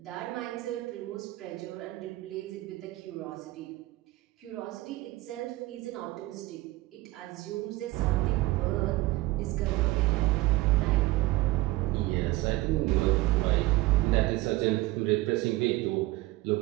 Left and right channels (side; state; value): left; quieter; 19.1 dB